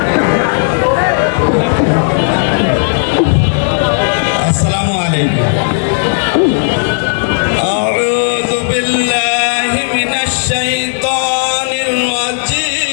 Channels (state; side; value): silent; right; 71 dB below the other